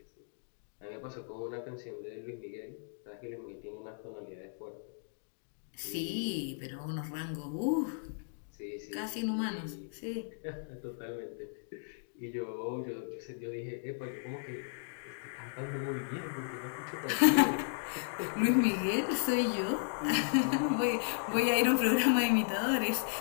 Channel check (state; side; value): silent; right; digital silence